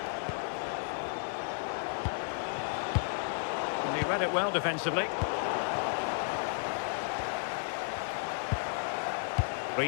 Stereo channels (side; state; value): right; silent; digital silence